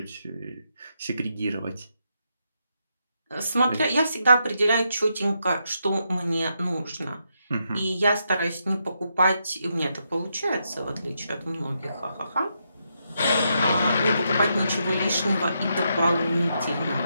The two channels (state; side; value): inverted; both; correlation -0.81